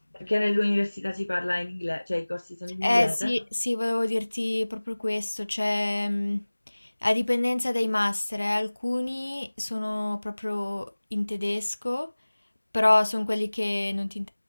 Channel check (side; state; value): both; inverted; correlation -1.00